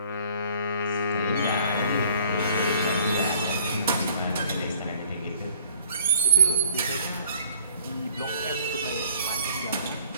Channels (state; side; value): inverted; both; correlation -0.55